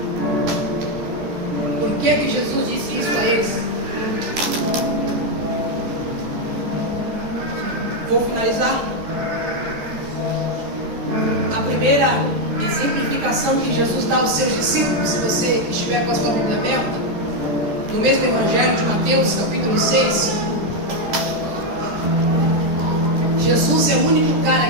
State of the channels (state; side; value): late; left; 14 ms